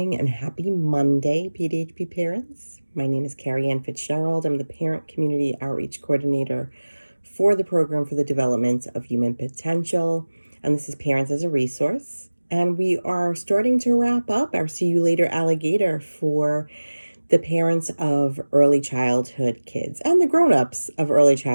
and happy Monday, PDHP parents. My name is Carrie Ann Fitzgerald. I'm the Parent Community Outreach Coordinator for the Program for the Development of Human Potential. And this is Parents as a Resource. And we are starting to wrap up our See You Later Alligator for the parents of early childhood kids and the grown-ups of early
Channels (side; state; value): both; inverted; correlation -1.00